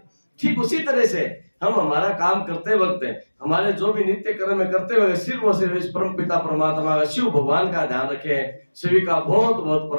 ठीक उसी तरह से हम हमारा काम करते वक्त, हमारे जो भी नित्य कर्म में करते हुए सिर्फ और सिर्फ इस परम पिता परमात्मा का, शिव भगवान का ध्यान रखें। सभी का बहुत बहुत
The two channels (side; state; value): both; inverted; correlation -1.00